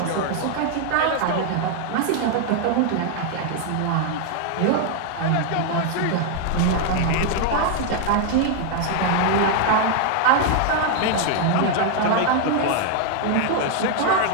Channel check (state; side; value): different; both; correlation 0.00